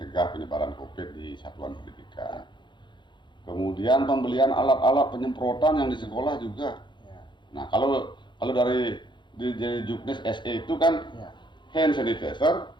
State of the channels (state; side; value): late; right; 0.23 ms